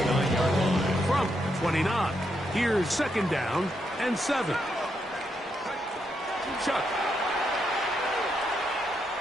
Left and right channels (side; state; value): both; normal; correlation 0.80